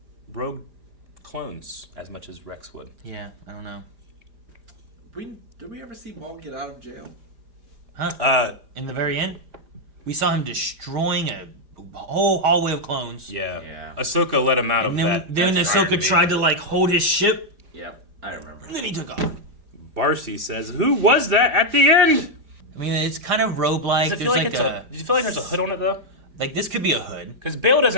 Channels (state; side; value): late; left; 4.9 ms